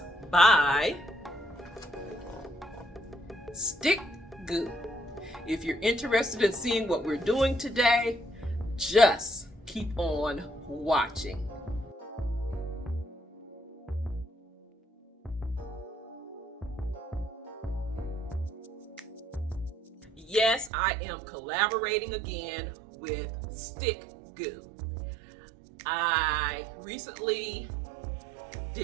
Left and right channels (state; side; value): drops out; left; at 20.7 s